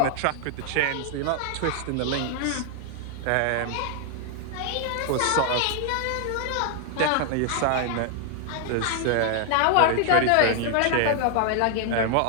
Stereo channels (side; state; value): both; different; correlation 0.00